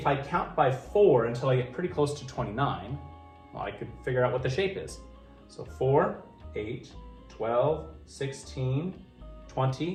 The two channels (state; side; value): identical; both; correlation 1.00